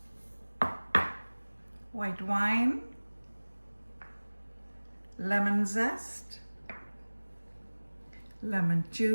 white wine, lemon zest, lemon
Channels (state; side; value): inverted; both; correlation -1.00